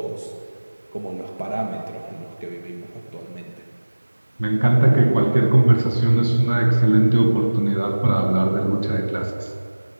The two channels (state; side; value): inverted; both; correlation -1.00